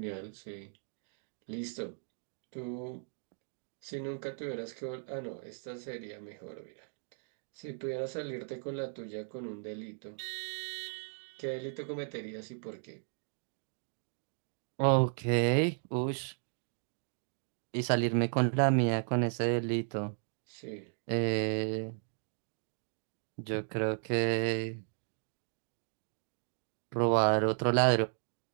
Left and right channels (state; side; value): silent; left; digital silence